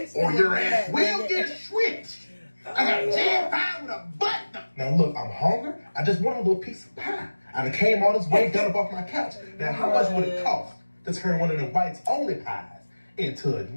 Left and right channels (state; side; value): inverted; both; correlation -1.00